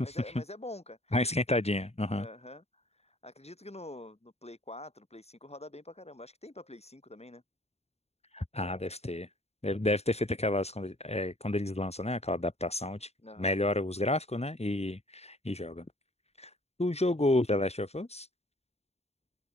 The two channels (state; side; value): late; right; 0.31 ms